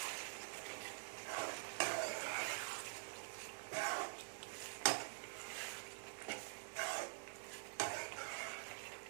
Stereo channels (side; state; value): left; silent; digital silence